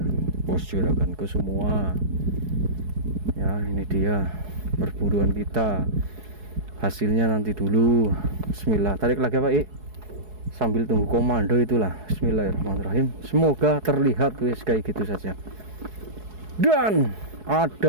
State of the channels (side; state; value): left; late; 4.7 ms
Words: bos juraganku semua ya. Ini dia perburuan kita, hasilnya nanti dulu. Bismillah, tarik lagi Pak sambil tunggu komando itulah. Bismillahirrahmanirrahim, semoga terlihat wis kayak gitu saja. Dan